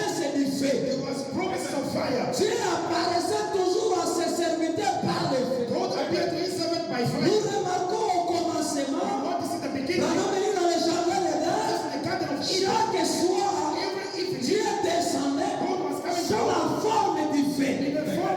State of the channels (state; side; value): identical; both; correlation 1.00